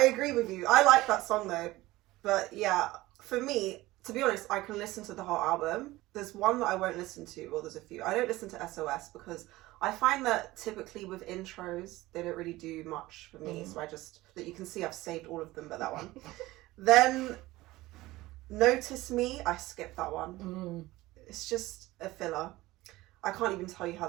agree with you. I like that song though. But yeah, for me, to be honest, I can listen to the whole album. There's one that I won't listen to. Well, there's a few. I don't listen to SOS because I find that typically with intros, they don't really do much for me. So that you can see I've saved all of them but that one. Then Notice Me, I skipped that one. It's just a filler. I can't even tell you how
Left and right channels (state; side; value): quieter; left; 18.5 dB